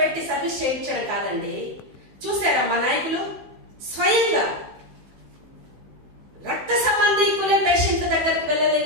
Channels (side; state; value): left; late; 16 ms